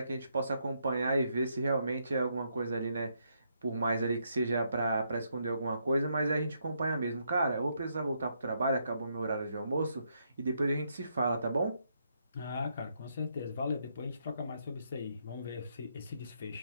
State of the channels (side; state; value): both; inverted; correlation -0.76